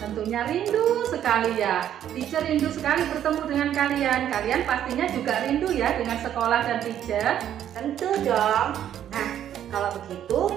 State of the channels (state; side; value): quieter; left; 10.5 dB